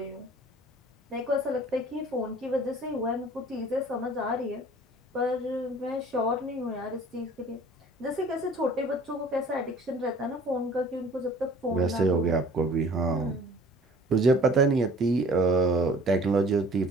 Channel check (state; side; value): normal; both; correlation 0.49